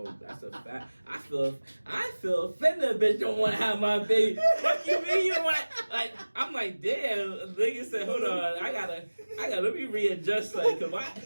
That's a fact. I feel offended. A bitch don't want to have my baby. Fuck you mean you don't want? Like I'm like, damn. Nigga said, hold on. I gotta. Let me readjust. Like,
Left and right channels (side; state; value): both; inverted; correlation -1.00